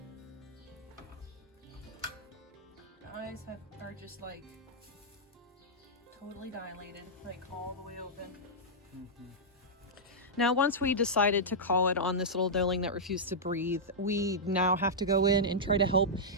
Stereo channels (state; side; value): normal; both; correlation -0.10